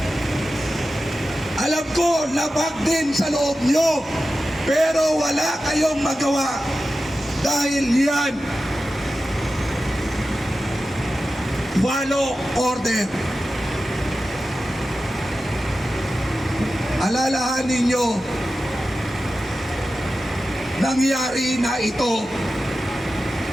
Alam ko, labag din sa loob nyo, pero wala kayong magawa dahil yan follow order. Alalahanin nyo, nangyari na ito.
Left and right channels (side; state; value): both; normal; correlation 0.93